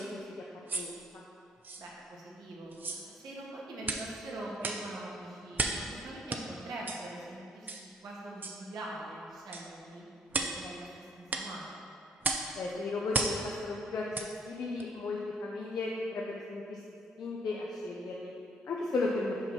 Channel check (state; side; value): normal; both; correlation 0.61